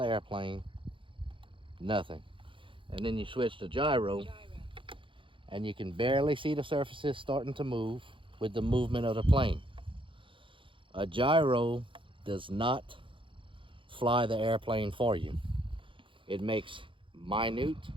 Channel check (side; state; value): left; late; 0.25 ms